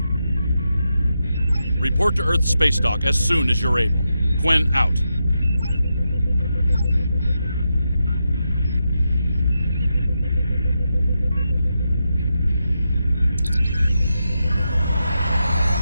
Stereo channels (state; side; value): inverted; both; correlation -0.86